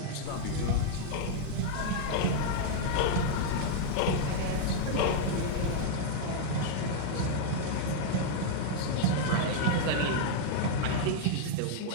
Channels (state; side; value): different; both; correlation -0.01